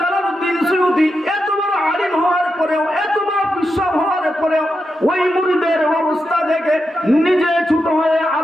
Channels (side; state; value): both; normal; correlation 0.87